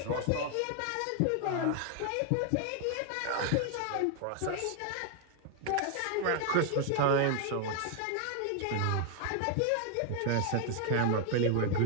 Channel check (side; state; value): both; different; correlation 0.00